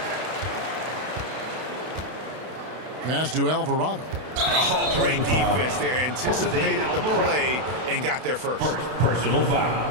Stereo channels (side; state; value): left; late; 32 ms